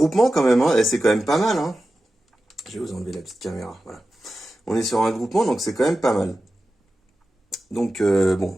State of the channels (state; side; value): normal; both; correlation 0.93